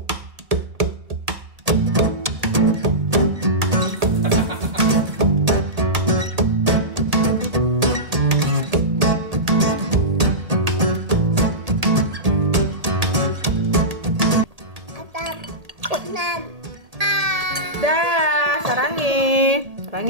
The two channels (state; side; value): late; left; 1.8 ms